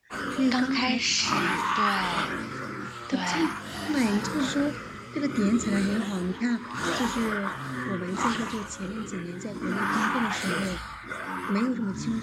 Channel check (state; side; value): identical; both; correlation 1.00